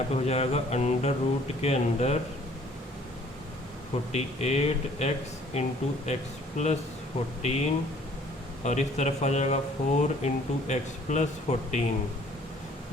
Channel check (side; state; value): both; normal; correlation 0.57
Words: पे हो जाएगा अंडर रूट के अंदर 48x इंटू एक्स प्लस 14, और इस तरफ आ जाएगा 4 into X plus